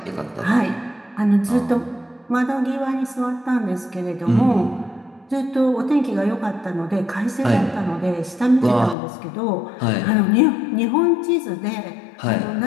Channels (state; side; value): drops out; right; at 9.0 s